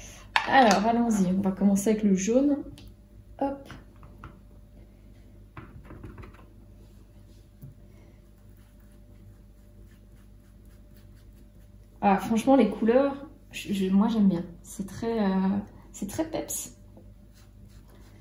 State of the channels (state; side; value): identical; both; correlation 1.00